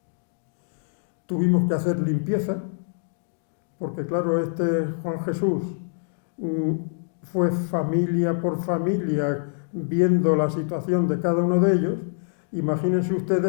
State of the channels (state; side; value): silent; right; digital silence